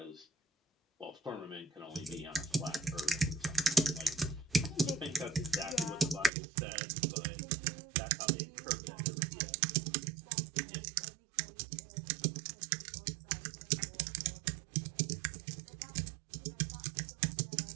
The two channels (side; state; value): left; drops out; at 6.3 s